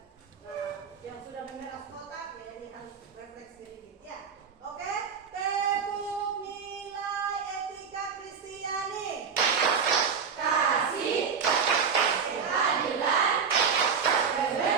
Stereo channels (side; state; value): left; quieter; 6.3 dB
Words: Nah, yang sudah memeras kotak ya ini harus refleks sedikit ya. Oke, tepuk nilai etika Kristiani. Kasih, keadilan,